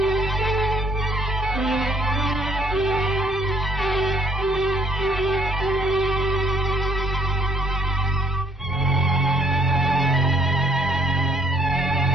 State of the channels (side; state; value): both; normal; correlation 0.64